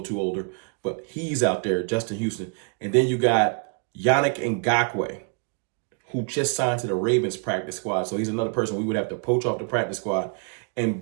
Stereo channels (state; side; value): quieter; left; 38.6 dB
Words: too older, but he's out there, Justin Houston. And then you got Yannick Ngakoue, who just signed to the Ravens practice squad. So he's another person we would have to poach off the practice squad and